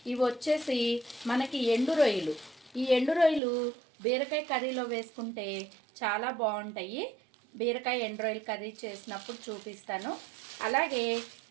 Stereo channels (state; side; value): drops out; left; at 3.4 s